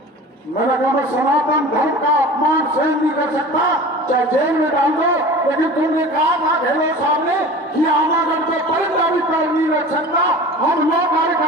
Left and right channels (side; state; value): both; normal; correlation 0.38